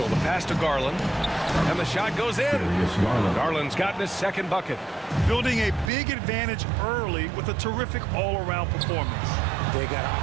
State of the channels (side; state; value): left; drops out; at 5.9 s